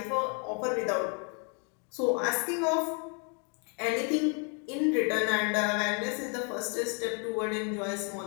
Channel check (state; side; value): quieter; right; 37.5 dB